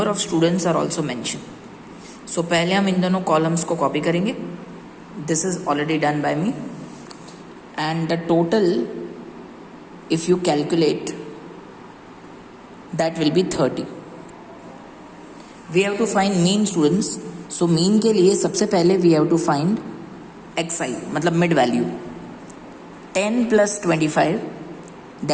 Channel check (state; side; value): identical; both; correlation 1.00